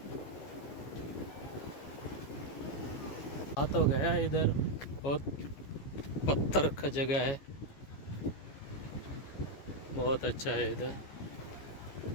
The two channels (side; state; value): right; late; 14 ms